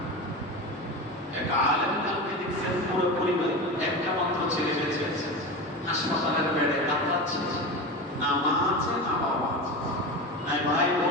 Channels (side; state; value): both; normal; correlation 0.25